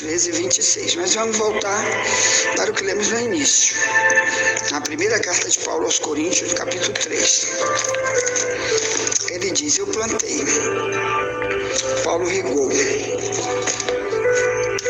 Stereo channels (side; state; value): both; identical; correlation 1.00